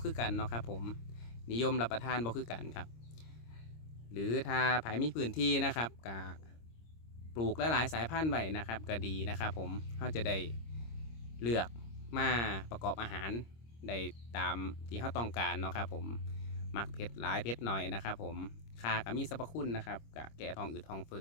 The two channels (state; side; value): late; right; 26 ms